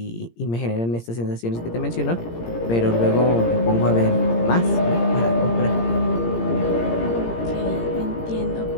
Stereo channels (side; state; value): right; late; 17 ms